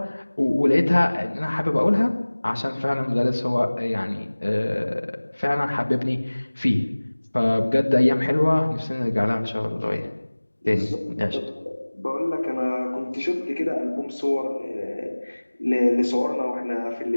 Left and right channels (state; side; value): inverted; both; correlation -1.00